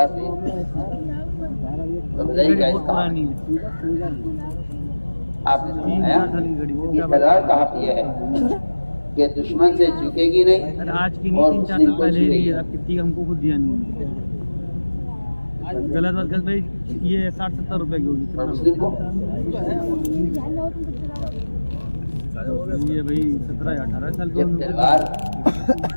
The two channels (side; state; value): both; inverted; correlation -1.00